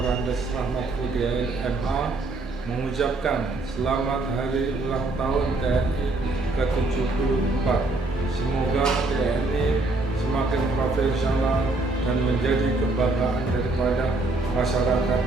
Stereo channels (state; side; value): quieter; left; 3.1 dB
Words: Rahmat Udiain MA mengucapkan selamat hari ulang tahun TNI ke-74. Semoga TNI semakin profesional dan menjadi kebanggaan daripada masyarakat